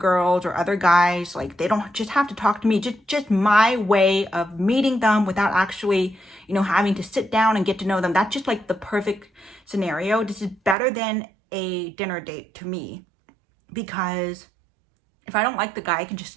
or other guys. Like, they don't just have to talk to me. Just my way of meeting them without actually, you know, having to sit down and get to know them. That's just like the perfect scenario. This is better than a dinner date to me, because if I don't like the guy, I can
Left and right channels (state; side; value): drops out; left; at 10.8 s